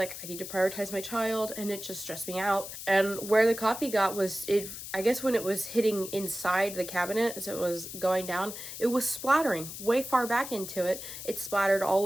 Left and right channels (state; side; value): noise; left; hiss, 10 dB below the sound